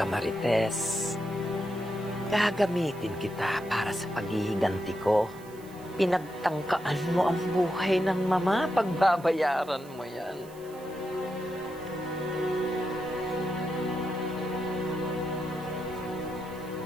Marites. Gagamitin kita para sa paghihiganti ko. Pinagtangkaan mo ang buhay ng mama. Pagbabayaran mo yan.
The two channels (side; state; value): right; noise; hiss, 23 dB below the sound